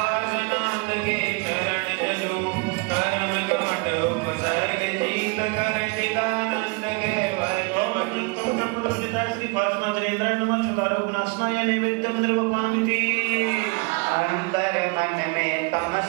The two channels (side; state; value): left; quieter; 31.9 dB